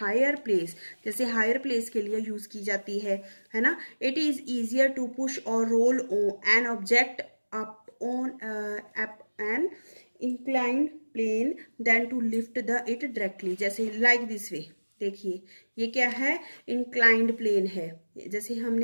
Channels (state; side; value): inverted; both; correlation -1.00